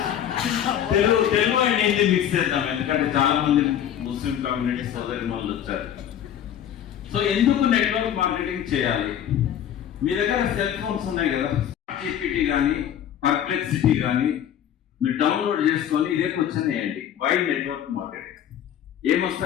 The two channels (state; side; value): quieter; right; 10.1 dB